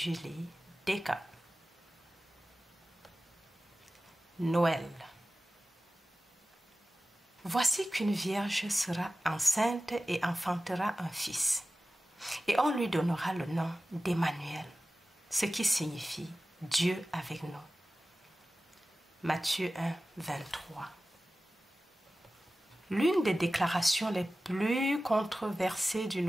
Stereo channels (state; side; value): normal; both; correlation 0.96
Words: Descamps. Noël. Voici qu'une vierge sera enceinte et enfantera un fils, et on lui donnera le nom d'Emmanuel, ce qui signifie Dieu avec nous. Matthieu 1, 23. L'une des déclarations les plus controversées du